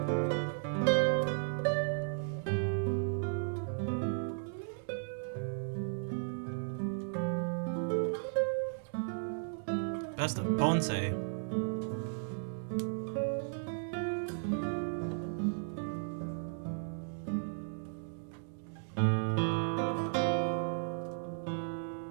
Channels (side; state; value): left; silent; digital silence